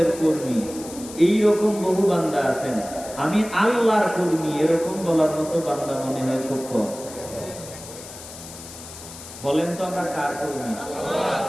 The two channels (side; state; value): left; noise; hiss, 14 dB below the sound